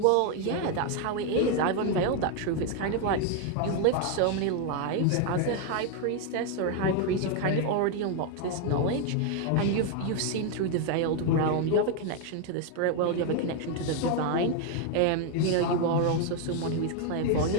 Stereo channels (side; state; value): both; different; correlation 0.01